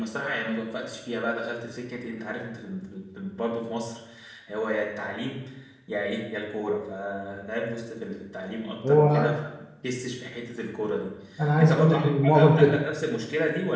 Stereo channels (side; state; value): both; identical; correlation 1.00